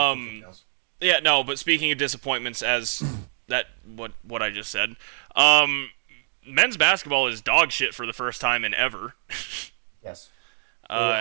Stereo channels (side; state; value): left; silent; digital silence